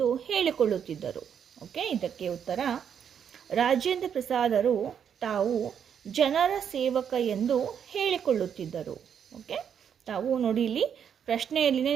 ಹೇಳಿಕೊಳ್ಳುತ್ತಿದ್ದರು? ಓಕೆ, ಇದಕ್ಕೆ ಉತ್ತರ, ರಾಜೇಂದ್ರ ಪ್ರಸಾದರು ತಾವು ಜನರ ಸೇವಕ ಎಂದು ಹೇಳಿಕೊಳ್ಳುತ್ತಿದ್ದರು. ಓಕೆ, ತಾವು ನೋಡಿ ಇಲ್ಲಿ ಪ್ರಶ್ನೆಯಲ್ಲಿನೇ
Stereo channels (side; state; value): left; quieter; 8.1 dB